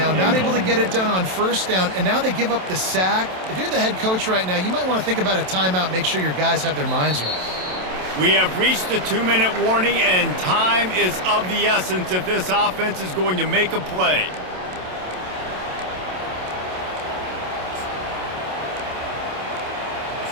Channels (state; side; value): late; left; 27 ms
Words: Not able to get it done on 1st down, and now they give up the sack. If you're the head coach right now, you might want to think about a timeout, make sure your guys have their minds right. We have reached the 2-minute warning, and time is of the essence if this offense is going to make a play.